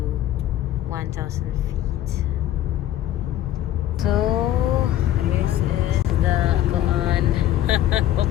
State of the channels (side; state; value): right; quieter; 12.7 dB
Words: 1,000 feet. So, this is the kuan.